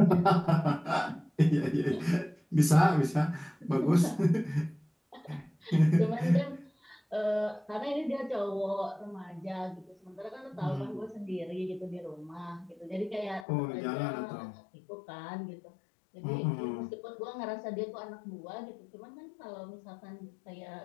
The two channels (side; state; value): right; drops out; at 13.5 s